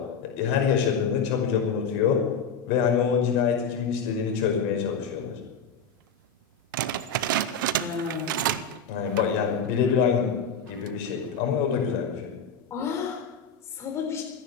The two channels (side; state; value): right; quieter; 4.8 dB